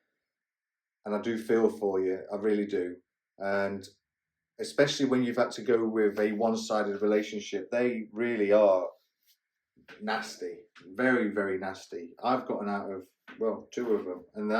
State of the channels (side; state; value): both; identical; correlation 1.00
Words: and I do feel for you, I really do, and especially when you've had to go with a one-sided relationship, they really are nasty, very, very nasty. I've gotten out of, 2 of them, and